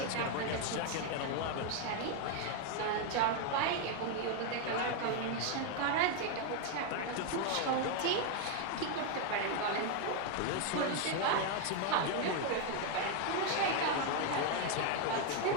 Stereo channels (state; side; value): different; both; correlation 0.01